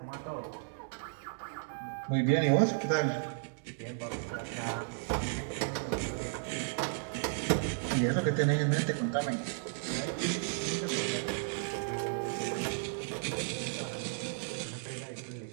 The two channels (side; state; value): left; silent; digital silence